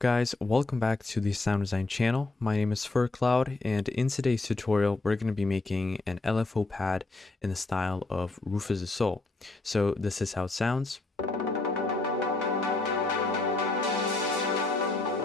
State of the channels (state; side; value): quieter; right; 3.2 dB